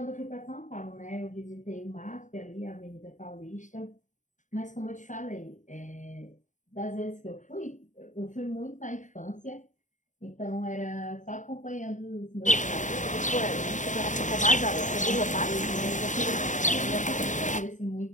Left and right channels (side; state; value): right; late; 0.36 ms